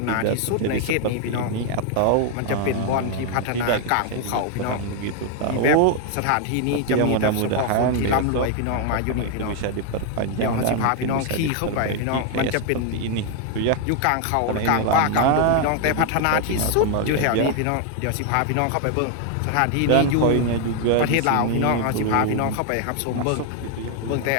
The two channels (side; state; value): both; different; correlation 0.00